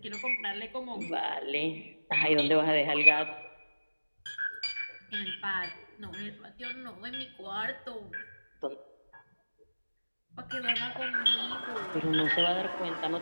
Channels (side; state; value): both; inverted; correlation -1.00